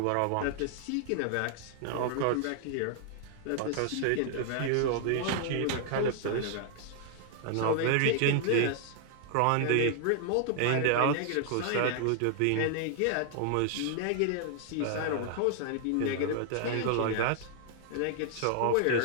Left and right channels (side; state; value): both; different; correlation 0.00